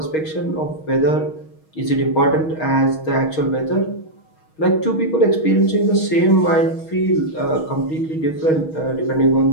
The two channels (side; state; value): right; late; 6.3 ms